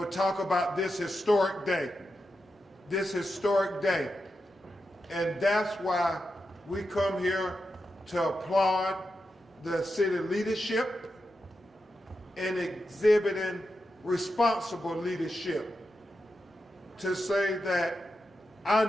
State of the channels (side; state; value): both; normal; correlation 0.88